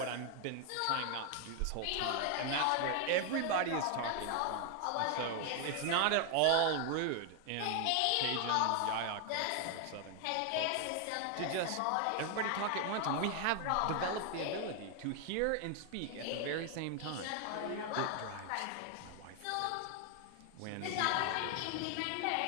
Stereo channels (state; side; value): different; both; correlation 0.00